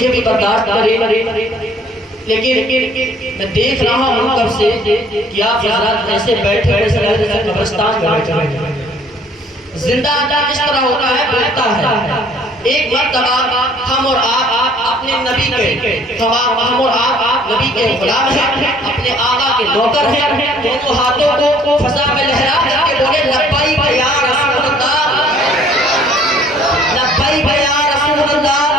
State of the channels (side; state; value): both; normal; correlation 0.58